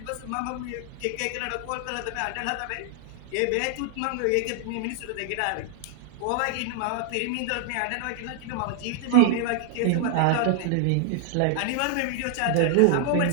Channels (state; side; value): different; both; correlation 0.00